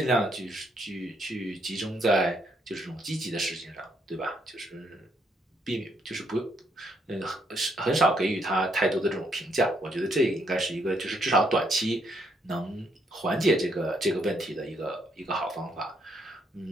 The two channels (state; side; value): normal; both; correlation 0.73